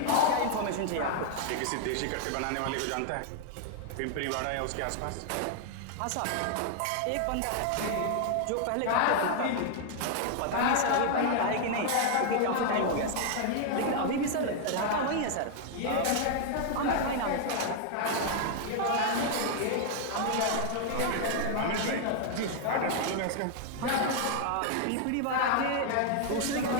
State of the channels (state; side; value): different; both; correlation 0.00